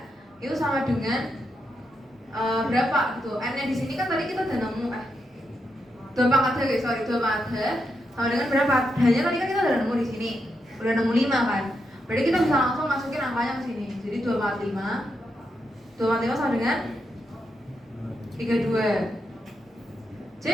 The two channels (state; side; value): normal; both; correlation 0.83